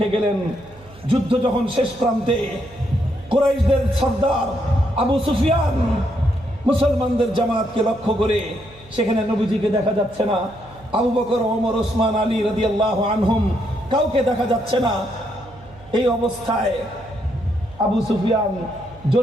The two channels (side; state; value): right; noise; hum, 23 dB below the sound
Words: গেলেন। যুদ্ধ যখন শেষ প্রান্তে, কুরাইশদের সর্দার আবু সুফিয়ান মুসলমানদের জামাতকে লক্ষ্য করে, সেখানে নবীজিকে দেখা যাচ্ছে না, আবু বকর, ওমর, ওসমান, আলী রাদিয়াল্লাহু আনহুম কাউকে দেখা যাচ্ছে না। এই অবস্থায় আবু সুফিয়ান